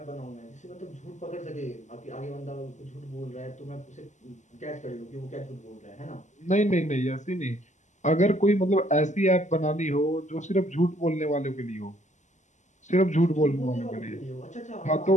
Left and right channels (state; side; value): late; right; 0.34 ms